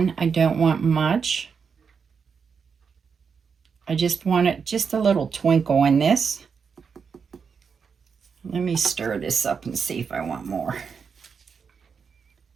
I don't want much. I just want it just a little twinkle in this. Let me stir this up and see if I want more.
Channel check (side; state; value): left; quieter; 6.0 dB